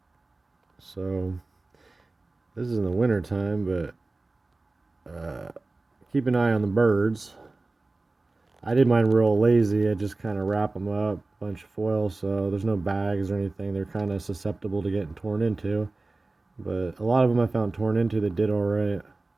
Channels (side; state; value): left; quieter; 3.2 dB